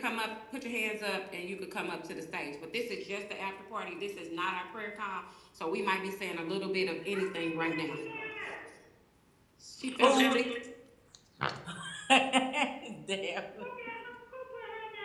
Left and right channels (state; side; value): identical; both; correlation 1.00